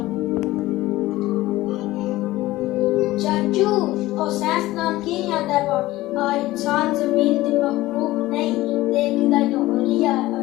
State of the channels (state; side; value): quieter; right; 17.4 dB